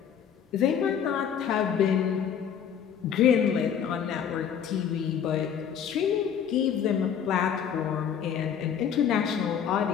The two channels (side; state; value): right; quieter; 8.2 dB